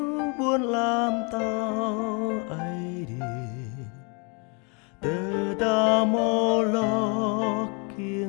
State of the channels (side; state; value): right; quieter; 34.2 dB